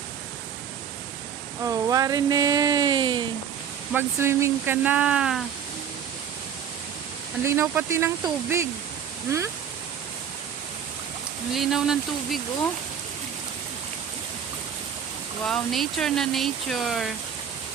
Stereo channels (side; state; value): left; quieter; 8.2 dB